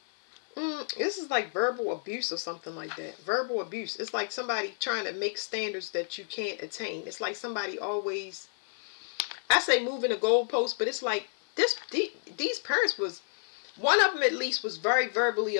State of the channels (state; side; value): silent; right; 58 dB below the other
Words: This is like verbal abuse or something like that. Verbal abuse. It's like somebody trying to make standards that you can't attain. It's like somebody always, I say moving the goalpost, but it's like these parents was, one of them at least was very verbally